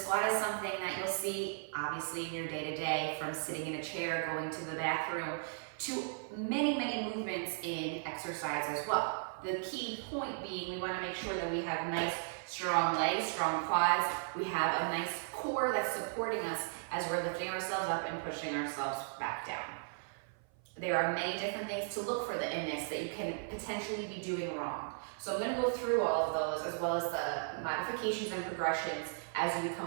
is something that you'll see obviously in your day-to-day, from sitting in a chair, going to the bathroom, to many movements in exercise as well. The key point being we want to make sure that we have nice strong legs, strong quads, we have a nice core that's supporting us as we're lifting ourselves up and pushing ourselves back down. There are many different things to look for in this that you can potentially be doing wrong. So I'm going to go through all of those as well as the modifications and progressions as you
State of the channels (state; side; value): silent; left; 54 dB below the other